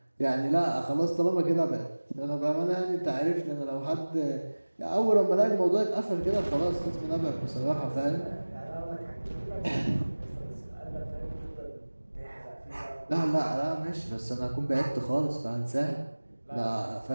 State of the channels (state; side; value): inverted; both; correlation -1.00